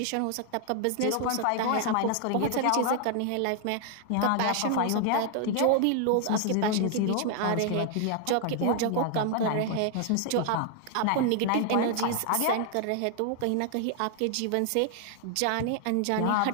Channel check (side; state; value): both; different; correlation 0.00